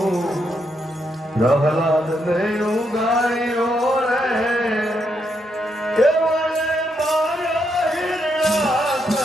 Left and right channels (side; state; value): both; normal; correlation 0.79